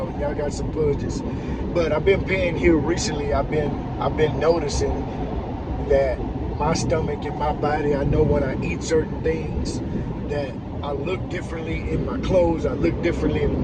got some budgets. But I've been paying here recently. I've been noticing that my stomach and my body, I know when I eat certain things that I look differently in my clothes, I look differently in the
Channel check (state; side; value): identical; both; correlation 1.00